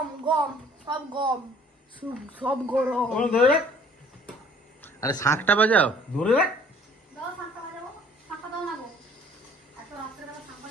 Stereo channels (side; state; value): both; normal; correlation 0.56